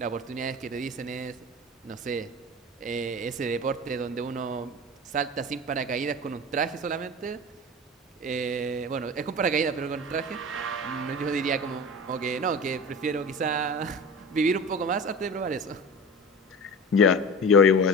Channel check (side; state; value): both; normal; correlation 0.33